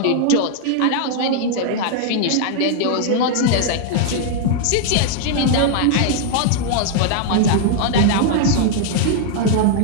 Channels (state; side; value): different; both; correlation -0.01